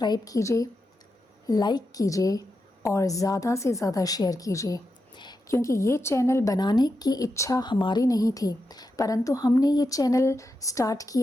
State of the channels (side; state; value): both; normal; correlation 0.87